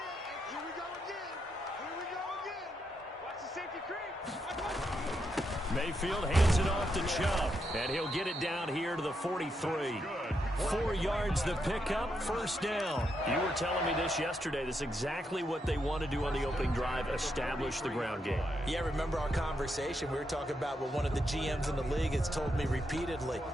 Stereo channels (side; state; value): both; normal; correlation 0.81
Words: Mayfield hands it off to Chubb, and he'll get it down here to the 43. 4 yards the pickup, first down. You were telling me this yesterday. This is exactly what they want to do on the opening drive, establish the ground game. Yeah, remember our conversation? We were talking about what one of the GMs in the league has told me repeatedly.